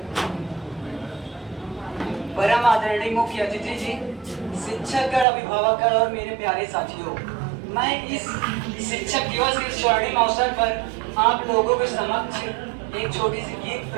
परम आदरणीय मुख्य अतिथि जी, शिक्षकगण, अभिभावकगण और मेरे प्यारे साथियों, मैं इस शिक्षक दिवस के स्वर्णिम अवसर पर आप लोगों के समक्ष एक छोटी सी गीत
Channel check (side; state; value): left; drops out; at 5.2 s